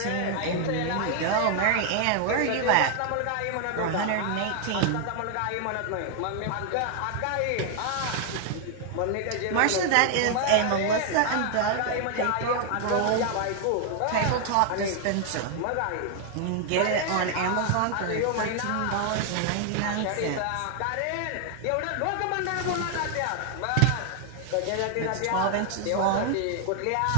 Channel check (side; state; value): both; different; correlation 0.00